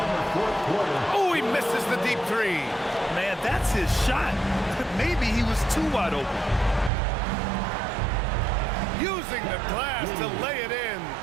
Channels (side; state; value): left; drops out; at 6.9 s